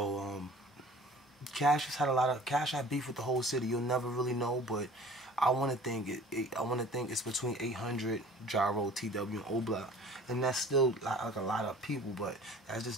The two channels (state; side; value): normal; both; correlation 0.46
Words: Cash had beef with the whole city. You'll never really know, but I want to think it's between 800 Gyro, TW, and O-Block, and that's still like a lot of people, but that's